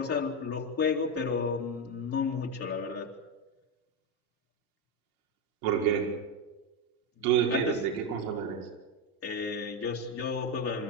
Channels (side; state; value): both; normal; correlation 0.09